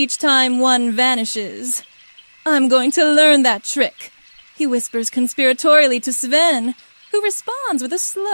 time one vanishes. "I'm going to learn that trick," he whispers conspiratorially to Sven, who responds with a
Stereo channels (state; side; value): inverted; both; correlation -1.00